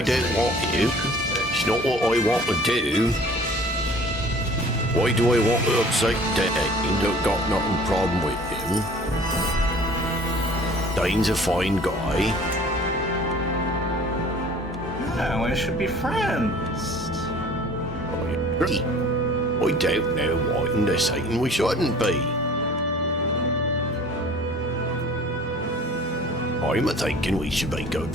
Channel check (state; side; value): normal; both; correlation 0.48